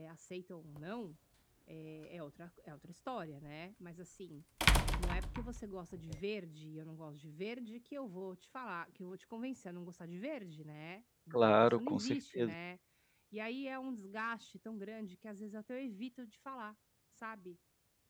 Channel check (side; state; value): both; identical; correlation 1.00